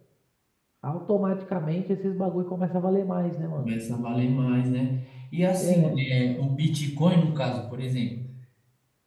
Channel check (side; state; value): both; identical; correlation 1.00